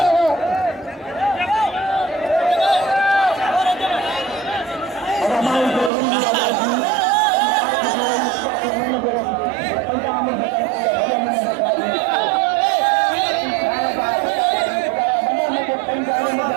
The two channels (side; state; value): left; drops out; at 5.9 s